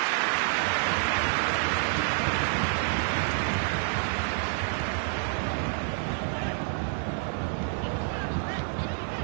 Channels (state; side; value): silent; left; 59 dB below the other